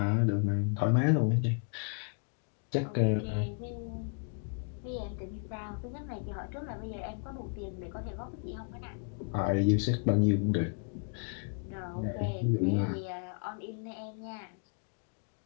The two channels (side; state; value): right; quieter; 39.2 dB